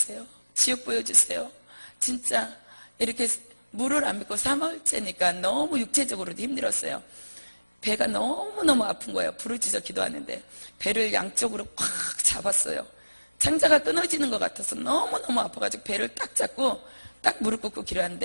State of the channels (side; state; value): both; inverted; correlation -1.00